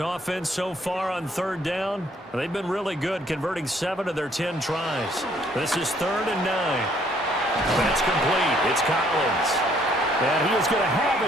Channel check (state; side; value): normal; both; correlation 0.64